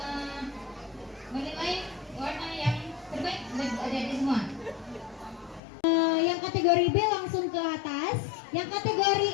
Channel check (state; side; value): drops out; right; at 5.6 s